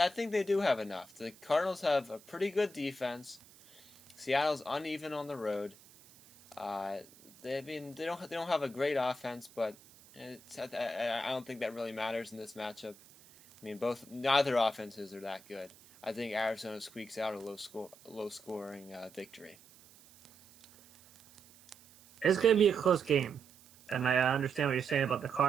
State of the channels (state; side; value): noise; right; hiss, 25 dB below the sound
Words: they do have enough. The Cardinals have a pretty good defense. Seattle's uneven on the road. They don't have a great offense, but I don't think that really matters in this matchup. I mean, neither offenses are that good. I think Arizona squeaks out a low scoring victory. It's going to be a close game, and I understand what you're saying about the